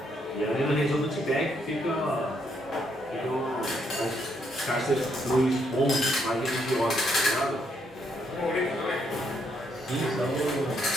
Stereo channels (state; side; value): normal; both; correlation 0.74